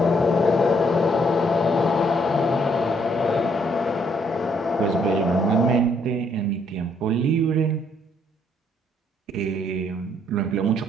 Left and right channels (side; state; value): both; normal; correlation 0.69